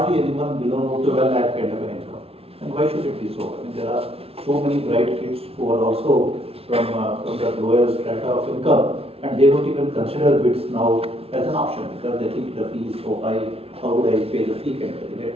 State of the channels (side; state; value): left; late; 0.28 ms